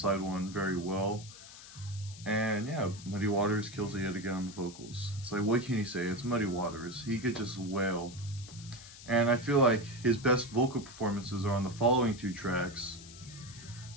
one very well. And yeah, Muddy Waters kills it yet again on the vocals. It's like, what can you say? It's Muddy Waters. He could just wail. And I feel like his best vocal performances are on the following two tracks.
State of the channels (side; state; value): left; noise; hiss, 16 dB below the sound